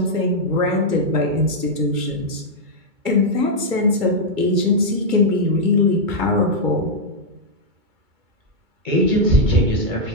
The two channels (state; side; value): late; left; 2.2 ms